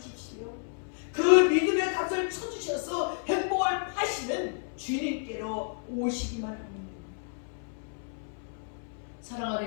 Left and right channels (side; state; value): right; silent; 57 dB below the other